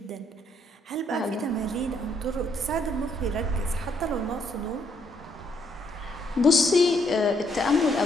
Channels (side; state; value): both; normal; correlation 0.71